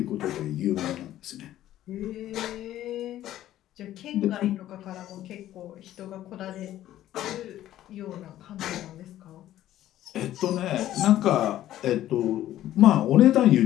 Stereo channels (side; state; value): right; quieter; 13.2 dB